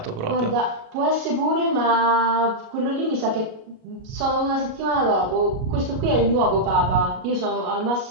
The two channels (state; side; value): late; left; 37 ms